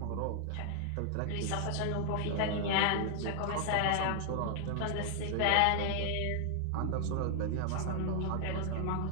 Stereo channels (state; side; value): different; both; correlation 0.00